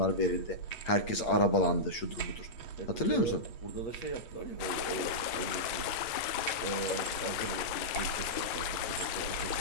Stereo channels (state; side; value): late; right; 9.1 ms